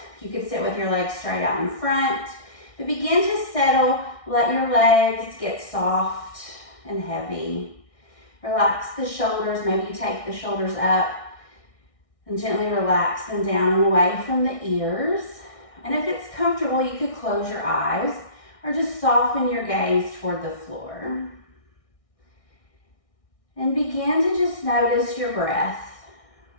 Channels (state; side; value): late; right; 1.6 ms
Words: You could sit with your legs straight out in front. But begin to settle. Let your legs get soft and heavy. Relax the shoulders. Maybe you take the shoulders up and gently relax them down and away from the ears. And if it's comfortable, you could close your eyes or just soften your gaze toward the floor. And begin to just notice your breath.